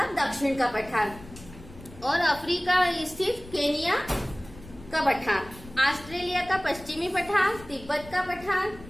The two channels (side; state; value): left; noise; rumble, 18 dB below the sound